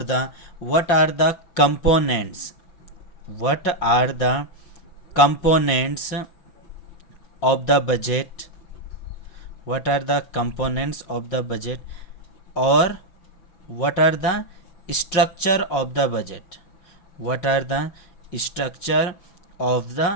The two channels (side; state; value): right; late; 5.6 ms